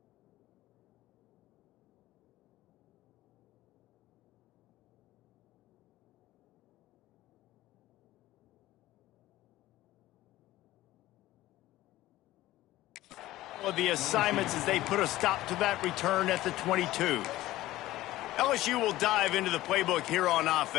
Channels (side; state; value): right; quieter; 16.2 dB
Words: Of the assignments as they put a stop to that return at the 22. LSU will dive into the playbook here on